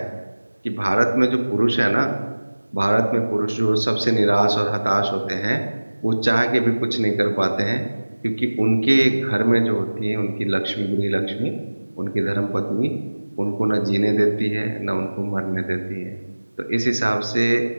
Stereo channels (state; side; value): inverted; both; correlation -1.00